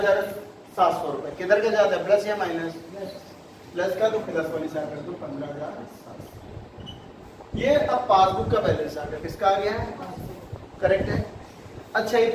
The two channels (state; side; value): identical; both; correlation 1.00